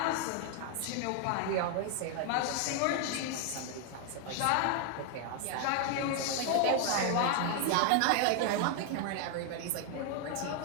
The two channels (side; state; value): both; different; correlation 0.00